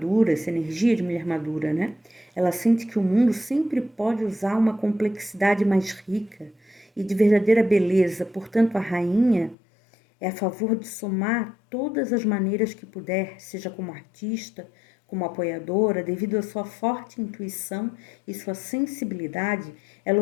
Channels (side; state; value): right; drops out; at 9.6 s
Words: essa energia de mulher madura, né? Ela sente que o mundo sempre pode usar uma complexidade mais rica e de verdadeira beleza. Portanto, a rainha é a favor de somar todas as maneiras que puder, seja como artista, como apoiadora, devido à sua forte intuição e sua sensibilidade,